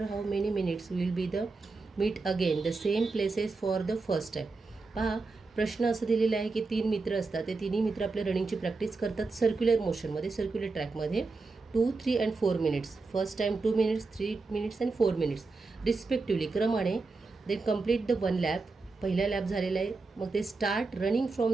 how many minutes will be the meet again the same places for the first time. पहा, प्रश्न असं दिलेला आहे की 3 मित्र असतात. ते तिन्ही मित्र आपल्या रनिंगची प्रॅक्टिस करतात सर्क्युलर मोशनमध्ये, सर्क्युलर ट्रॅकमध्ये. 2, 3 and 4 minutes. First time 2 minutes, 3 minutes and 4 minutes respectively क्रमाने. They complete the 1 lap. पहिला लॅप झालेला आहे. मग ते start running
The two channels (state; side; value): quieter; left; 3.9 dB